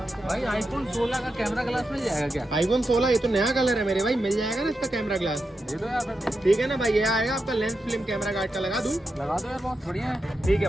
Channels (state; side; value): normal; both; correlation 0.88